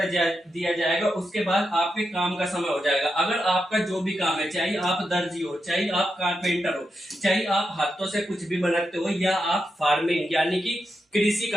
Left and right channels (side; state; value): both; normal; correlation 0.86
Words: दिया जाएगा, उसके बाद आपके काम का समय हो जाएगा। अगर आपका जो भी काम है, चाहे आप दर्जी हो, चाहे आप कारपेंटर हो, चाहे आप हाथों से कुछ भी बनाते हो या आप फार्मिंग यानी कि कृषि